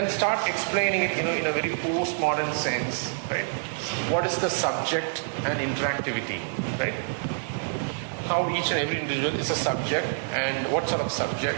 start explaining it, in a very postmodern sense, right? What is the subject and interactivity, right? How each and every individual is a subject, and what sort of subject?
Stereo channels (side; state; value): left; silent; digital silence